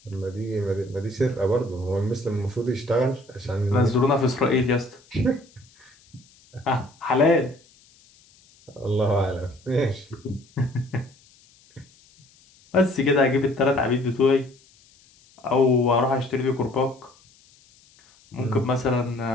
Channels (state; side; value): noise; left; hiss, 29 dB below the sound